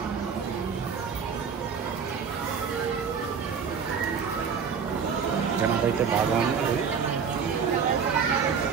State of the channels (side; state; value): left; quieter; 6.4 dB